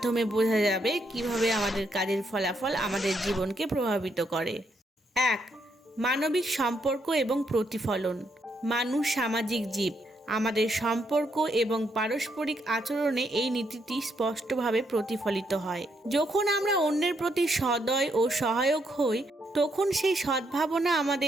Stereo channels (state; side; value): normal; both; correlation 0.76